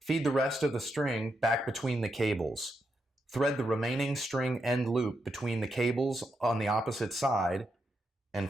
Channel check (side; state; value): both; normal; correlation 0.83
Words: the rest of the string back between the cables. Thread the remaining string end loop between the cables on the opposite side